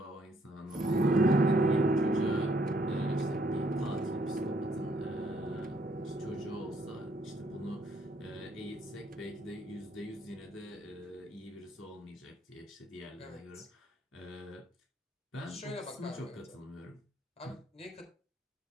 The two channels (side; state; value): both; normal; correlation 0.69